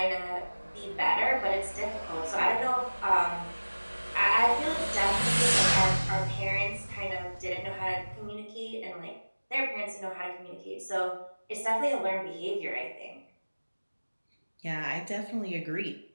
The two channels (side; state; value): both; inverted; correlation -1.00